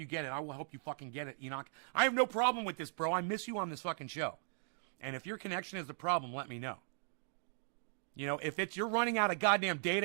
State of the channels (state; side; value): silent; left; digital silence